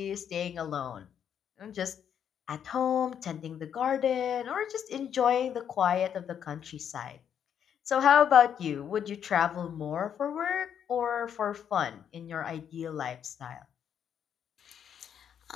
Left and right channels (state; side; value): quieter; right; 8.6 dB